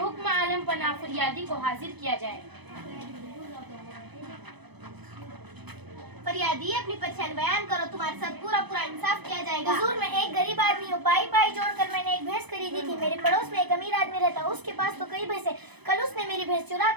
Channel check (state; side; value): late; left; 0.99 ms